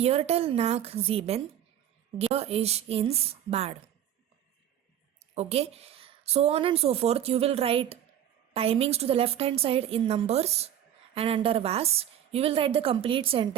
nach 7 gehe ich ins Bad. Okay? So on and so forth, you will write timings to the left hand side in numbers, and under was, you will write the complete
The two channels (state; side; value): quieter; left; 10.6 dB